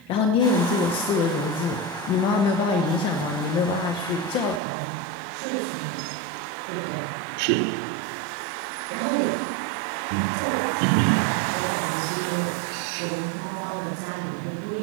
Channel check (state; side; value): drops out; left; at 4.6 s